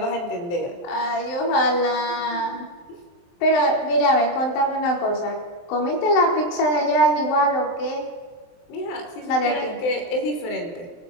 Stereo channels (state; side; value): late; right; 23 ms